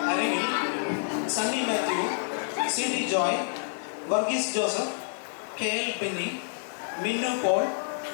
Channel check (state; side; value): silent; right; digital silence